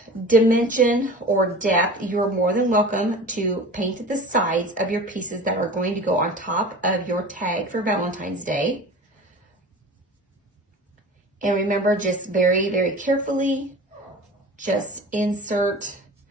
dimension or depth, you're more than welcome to paint the sides of your pieces that are going to go on top of your tag for Valentine's Day. And remember, just very, very carefully, just insert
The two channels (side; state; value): both; normal; correlation 0.37